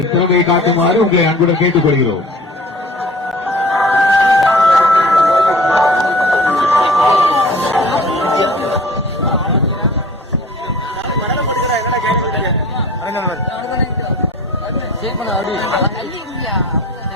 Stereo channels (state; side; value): normal; both; correlation 0.45